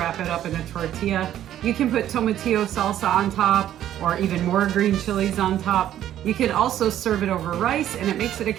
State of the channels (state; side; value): quieter; left; 11.6 dB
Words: it up in a tortilla. You can put tomatillo salsa on top or even more green chilies on top. You can also serve it over rice and it makes it a